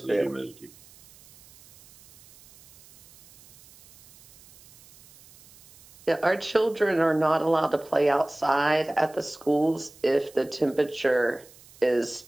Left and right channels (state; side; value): noise; right; hiss, 25 dB below the sound